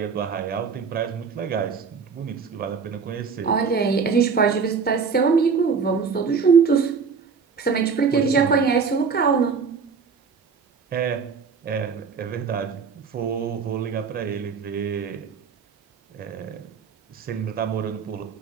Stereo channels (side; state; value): left; quieter; 5.6 dB